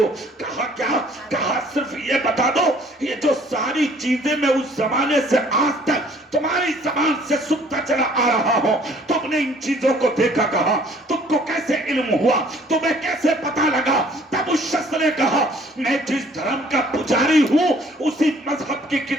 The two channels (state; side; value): normal; both; correlation 0.57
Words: کہا کیا؟ کہا صرف یہ بتا دو یہ جو ساری چیزیں میں اس زمانے سے آج تک تمہاری زبان سے سنتا چلا آ رہا ہوں, تم نے ان چیزوں کو دیکھا کہا؟ تم کو کیسے علم ہوا؟ تمہیں کیسے پتا لگا؟ تب اس شخص نے کہا میں جس دھرم کا پجاری ہوں اسی مذہب کی